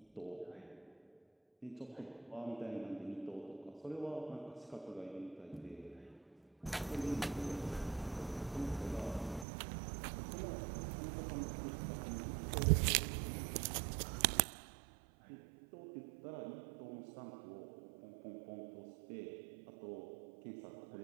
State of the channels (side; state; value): left; drops out; at 9.5 s